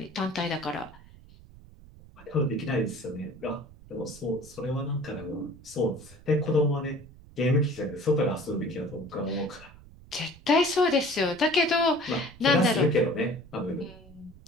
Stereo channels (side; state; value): right; noise; rumble, 22 dB below the sound